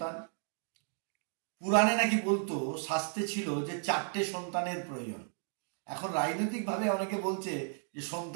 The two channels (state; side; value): silent; left; 55 dB below the other